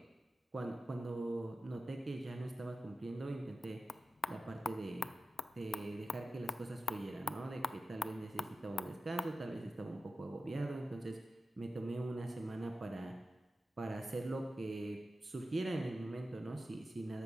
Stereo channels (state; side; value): normal; both; correlation 0.94